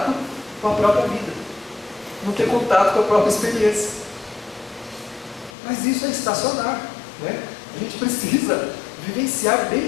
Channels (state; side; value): drops out; right; at 5.5 s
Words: com a própria vida, não ter contato com a própria experiência. Mas isso é estacionar, né? A gente precisa vivenciar